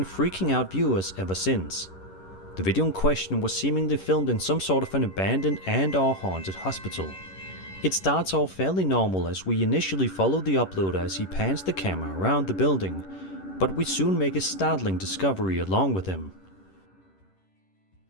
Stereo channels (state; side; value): late; right; 11 ms